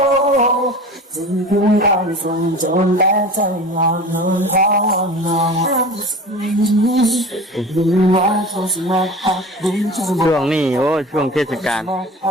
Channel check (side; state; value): both; normal; correlation 0.36